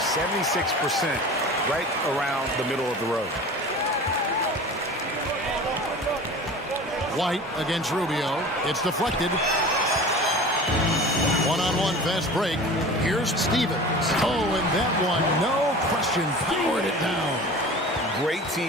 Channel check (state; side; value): normal; both; correlation 0.38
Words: right around the middle of the road. White against Rubio. It's deflected. One-on-one fast break. Here's Stevens. Oh, and that one, no question, powered it down. Great